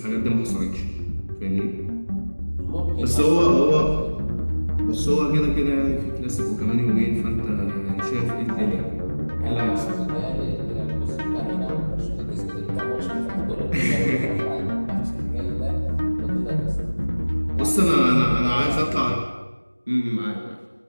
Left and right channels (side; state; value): both; inverted; correlation -1.00